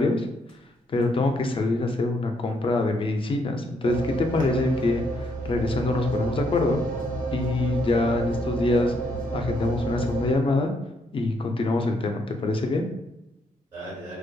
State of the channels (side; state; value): both; normal; correlation 0.74